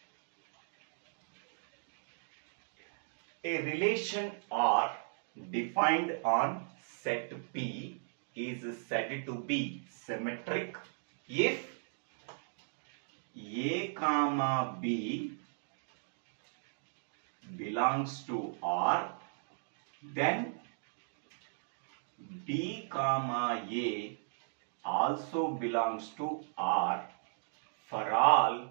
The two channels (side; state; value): left; silent; digital silence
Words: A relation R defined on set P is said to be symmetric if A comma B belongs to R, then B comma A also belongs to R for all